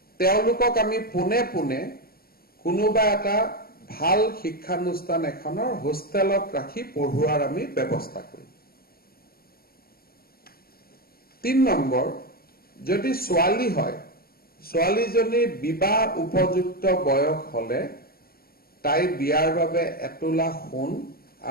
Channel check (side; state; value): right; late; 0.44 ms